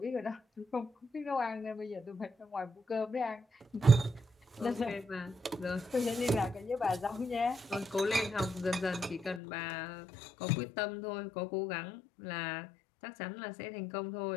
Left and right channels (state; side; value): drops out; right; at 9.4 s